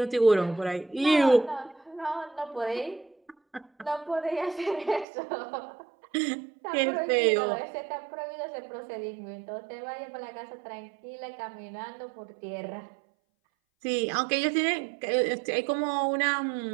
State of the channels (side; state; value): left; drops out; at 5.1 s